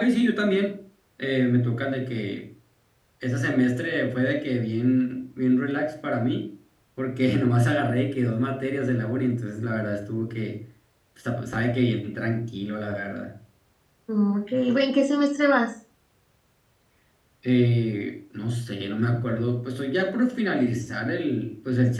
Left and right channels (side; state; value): both; identical; correlation 1.00